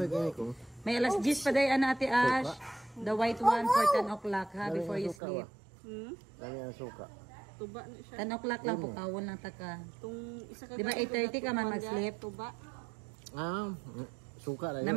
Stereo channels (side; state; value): left; drops out; at 5.2 s